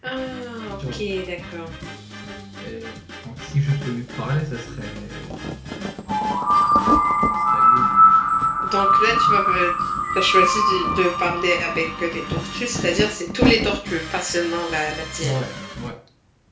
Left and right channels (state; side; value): identical; both; correlation 1.00